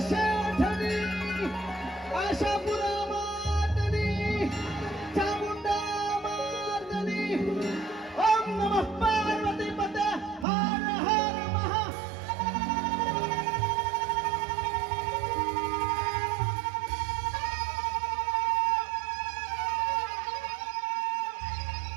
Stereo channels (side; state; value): left; drops out; at 10.5 s